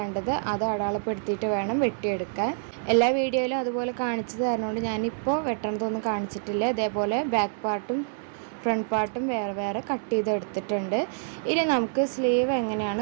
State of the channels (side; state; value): left; silent; digital silence